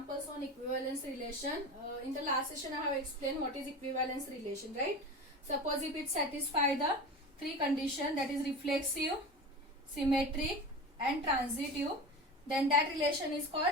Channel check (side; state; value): both; normal; correlation 0.30